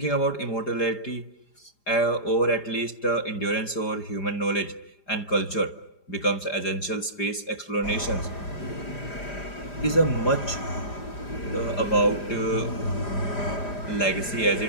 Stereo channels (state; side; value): late; right; 5.0 ms